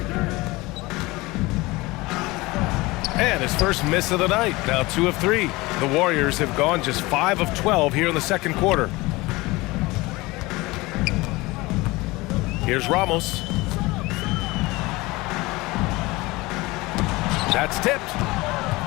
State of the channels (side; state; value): right; quieter; 21.8 dB